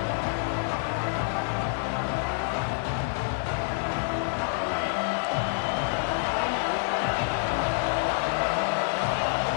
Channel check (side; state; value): right; silent; digital silence